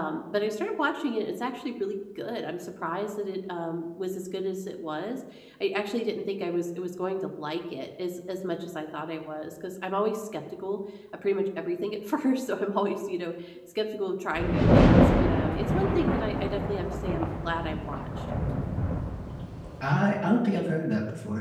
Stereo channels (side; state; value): both; identical; correlation 1.00